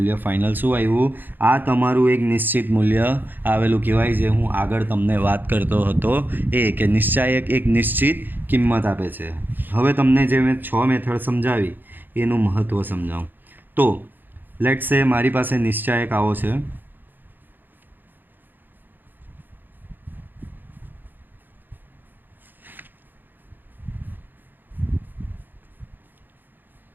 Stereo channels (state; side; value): late; left; 0.091 ms